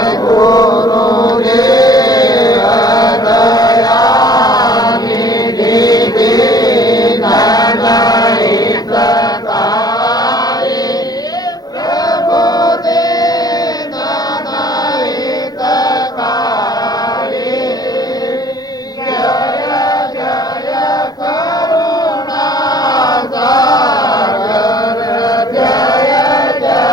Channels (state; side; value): late; right; 0.19 ms